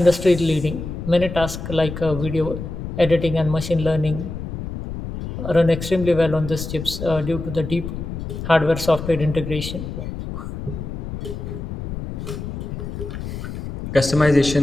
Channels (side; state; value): left; noise; rumble, 7 dB below the sound